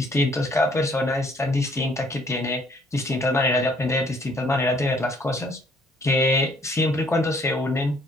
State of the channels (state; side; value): normal; both; correlation 0.63